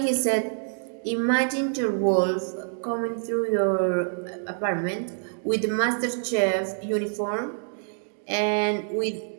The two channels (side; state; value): left; silent; digital silence